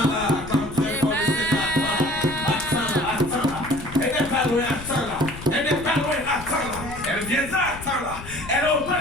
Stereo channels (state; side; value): noise; left; rumble, 13 dB below the sound